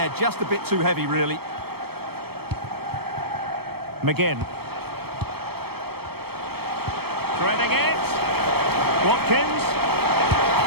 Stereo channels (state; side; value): late; left; 0.96 ms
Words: just a bit too heavy, really. McGinn. Threading it. Watkins.